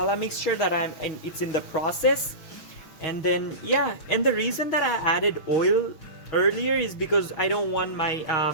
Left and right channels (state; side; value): late; right; 6.3 ms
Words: mixture that it's in the process. And then yeah, and the reason that I added oil earlier is because I don't want my